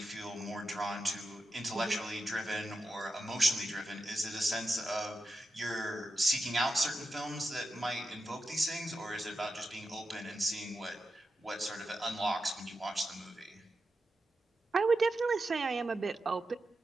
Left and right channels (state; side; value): normal; both; correlation 0.88